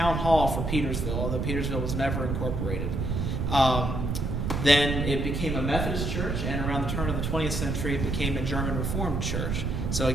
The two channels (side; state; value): right; noise; rumble, 1 dB below the sound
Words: hall for Petersville, although Petersville was never incorporated. Then it became a Methodist church, and around the turn of the 20th century, it became a German Reformed church. So